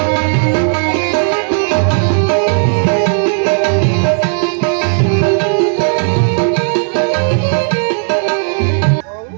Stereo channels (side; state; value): left; silent; digital silence